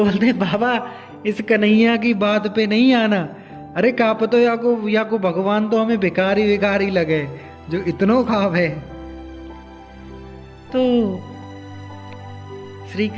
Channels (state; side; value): identical; both; correlation 1.00